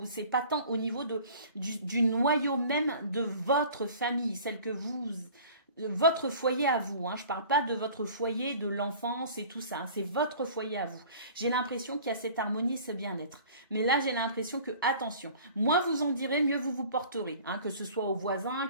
c'est pas tant au niveau du noyau même de votre famille, celle que votre foyer à vous, hein. Je parle pas de votre foyer de l'enfance et tout ça, hein. C'est votre foyer à vous. J'ai l'impression qu'il y a cette harmonie, ce bien-être. Mais là, j'ai l'impression que, attention, moins vous en direz, mieux vous vous porterez, hein. Que ce soit aux voisins,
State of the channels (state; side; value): inverted; both; correlation -0.46